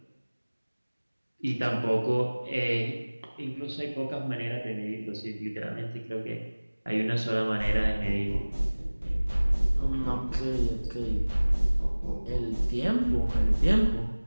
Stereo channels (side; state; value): both; inverted; correlation -1.00